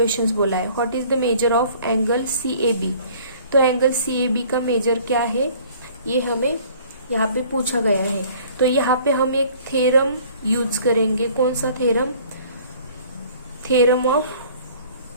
बोला है। What is the measure of angle CAB, तो तो एंगल CAB का मेजर क्या है ये हमें यहाँ पे पूछा गया है। तो यहाँ पे हम एक थ्योरम यूज करेंगे। कौन सा theorem? Theorem of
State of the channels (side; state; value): both; inverted; correlation -0.52